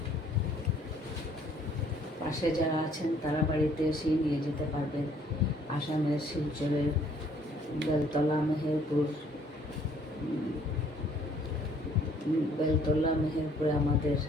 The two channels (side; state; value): both; normal; correlation 0.61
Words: পাশে যারা আছেন তারা বাড়িতে এসেই নিয়ে যেতে পারবেন। আসামের শিলচরের বেলতলা মেহেরপুরে আমাদের